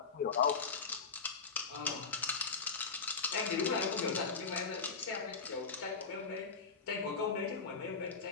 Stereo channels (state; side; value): quieter; right; 5.2 dB